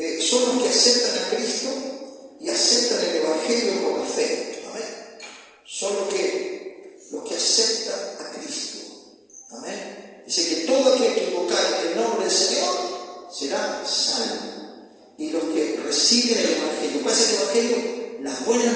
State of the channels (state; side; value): identical; both; correlation 1.00